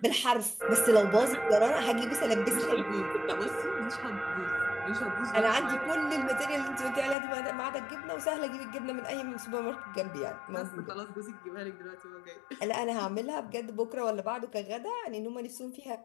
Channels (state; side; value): drops out; right; at 7.2 s